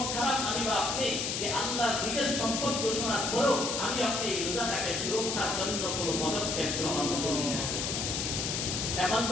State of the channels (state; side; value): noise; left; hiss, 1 dB below the sound